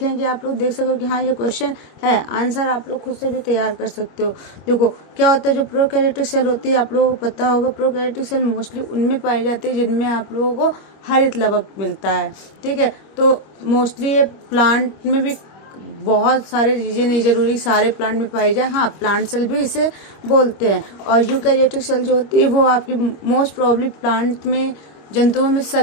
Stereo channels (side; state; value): right; late; 25 ms